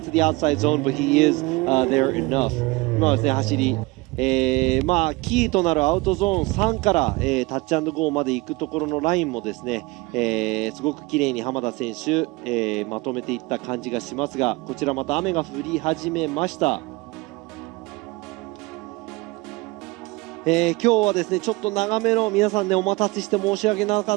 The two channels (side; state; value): left; quieter; 23.6 dB